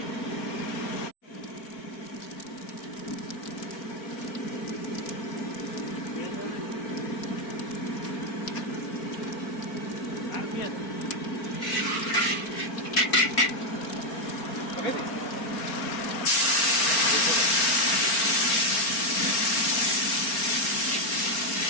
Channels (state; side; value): late; right; 4.3 ms